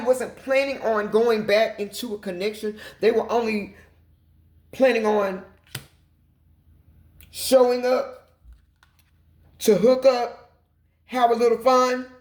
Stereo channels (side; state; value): both; identical; correlation 1.00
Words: planning on going back into a connection. They were only planning on showing up to hook up, have a little fun,